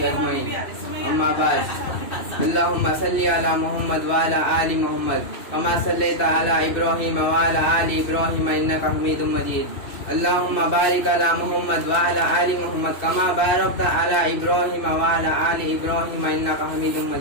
अजमईन। अम्मा बाद। अल्लाहुम्मा सल्लि अला मुहम्मद व अला आलि मुहम्मद कमा सल्लैता अला इब्राहीम व अला आलि इब्राहीम इन्नका हमीदुम मजीद। अल्लाहुम्मा बारिक अला मुहम्मद व अला आलि मुहम्मद कमा बारकता अला इब्राहीम व अला आलि इब्राहीम इन्नका हमीदुम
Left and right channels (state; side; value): late; right; 2.7 ms